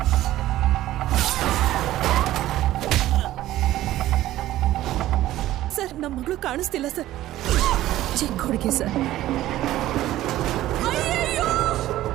ಸರ್, ನಮ್ಮ ಮಗಳು ಕಾಣಿಸ್ತಿಲ್ಲ ಸರ್. ಚಿಕ್ಕ ಹುಡುಗಿ ಸರ್.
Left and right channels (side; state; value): left; quieter; 14.7 dB